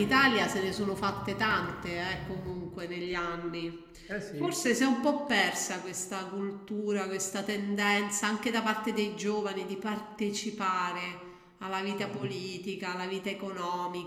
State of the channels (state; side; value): identical; both; correlation 1.00